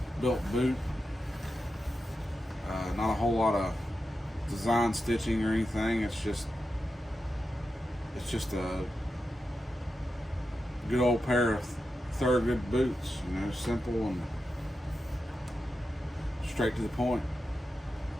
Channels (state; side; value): normal; both; correlation 0.90